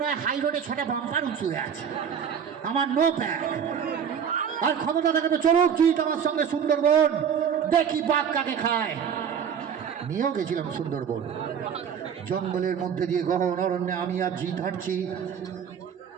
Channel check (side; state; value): left; quieter; 7.7 dB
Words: হয় হাই রোডে 6টা বাম্পার উঁচু হয়ে আছে, আমার নো প্যাক। আর ক্ষমতা থাকে তো চলুক জিত আমার সঙ্গে সুন্দরবন, দেখি বাঘ কাকে খায়। নিয়েও গেছিলাম সুন্দরবন, জঙ্গলের মধ্যে দিয়ে গহন অরণ্যে আমি আর জিত হাঁটছি।